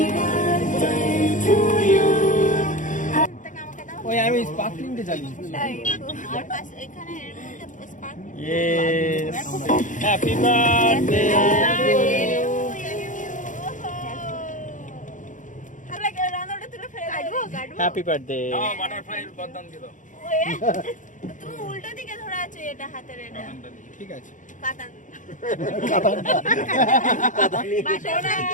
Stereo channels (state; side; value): late; right; 0.37 ms